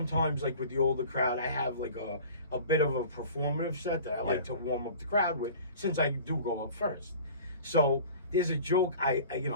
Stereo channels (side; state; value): both; inverted; correlation -0.43